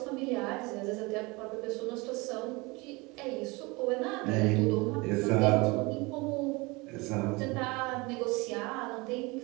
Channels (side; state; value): left; quieter; 25.2 dB